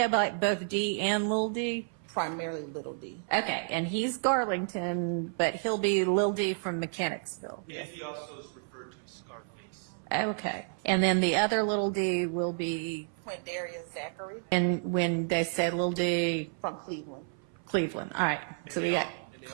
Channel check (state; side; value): silent; left; 57 dB below the other